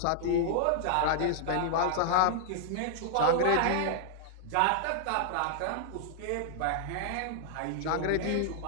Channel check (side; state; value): both; different; correlation 0.00